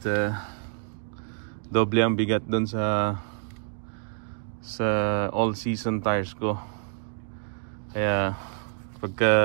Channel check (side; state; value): left; silent; 56 dB below the other